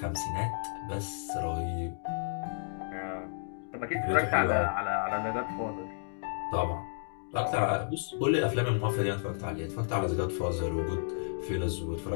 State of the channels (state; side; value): silent; right; digital silence